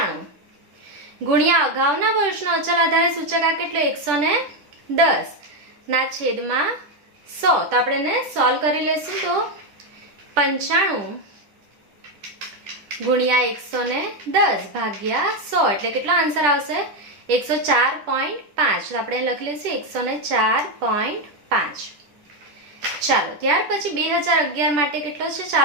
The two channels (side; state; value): left; late; 10 ms